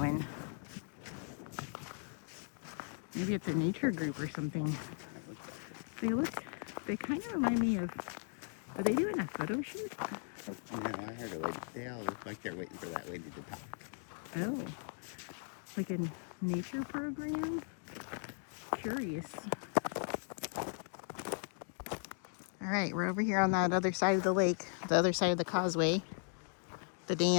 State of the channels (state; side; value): silent; right; 53 dB below the other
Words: Maybe it's a nature group or something. They kind of remind me of, are they doing a photo shoot? No, I heard a lady. They all look like they're waiting for that lady to talk. Oh, like a nature program? Curious. All right, we're over here on that other side of the lake, the other side of the causeway, the